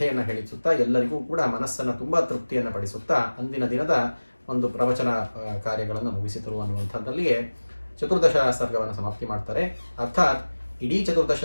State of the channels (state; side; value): inverted; both; correlation -1.00